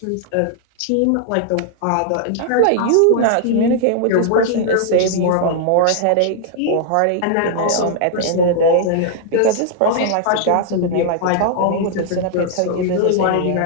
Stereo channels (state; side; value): different; both; correlation -0.01